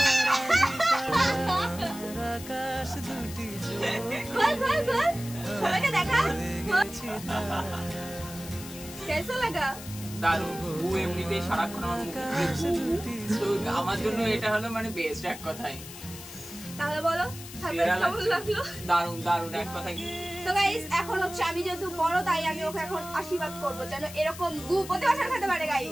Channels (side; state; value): left; noise; hiss, 13 dB below the sound